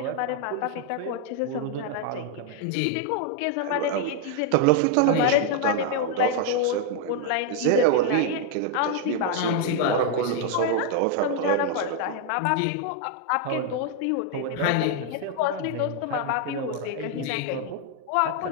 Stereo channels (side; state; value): both; different; correlation 0.00